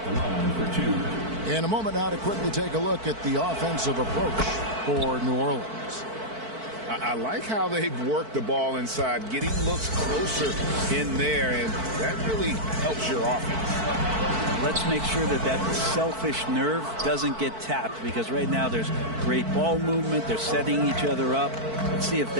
For 2. In a moment now to quickly take a look at the offensive approach for New Orleans. I like how they've worked the ball inside, getting looks closer in there, and that really helps your offense. Let's make sure that that selfish nerve doesn't get tapped, because right now there's great ball movement. They're setting each other up. Let's see if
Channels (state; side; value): late; left; 4.5 ms